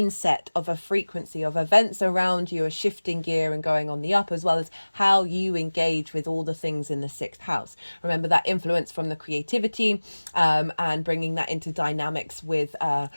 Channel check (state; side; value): inverted; both; correlation -1.00